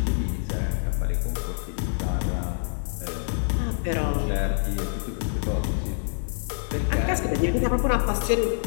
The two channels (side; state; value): right; silent; digital silence